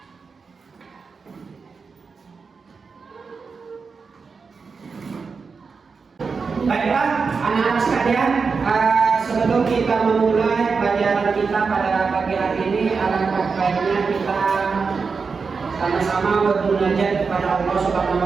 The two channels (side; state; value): left; quieter; 5.0 dB